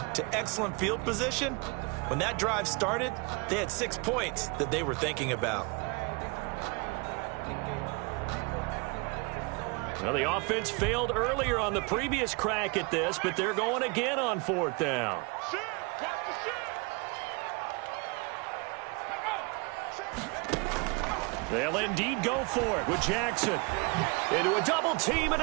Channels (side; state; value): left; quieter; 29.5 dB